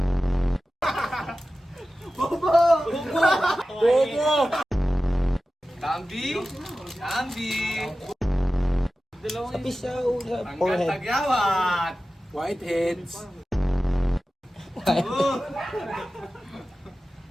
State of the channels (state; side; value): normal; both; correlation 0.95